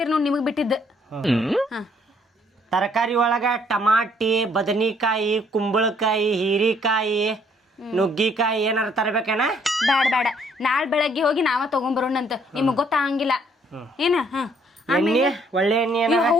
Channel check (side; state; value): both; normal; correlation 0.65